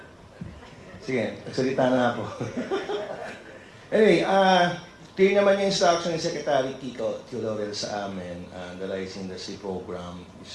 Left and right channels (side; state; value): both; identical; correlation 1.00